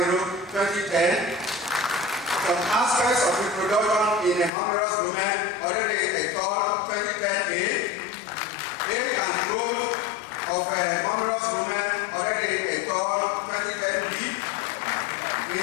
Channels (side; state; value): right; drops out; at 4.5 s